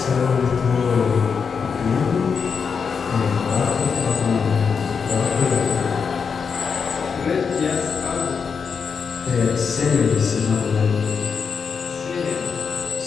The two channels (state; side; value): quieter; right; 5.9 dB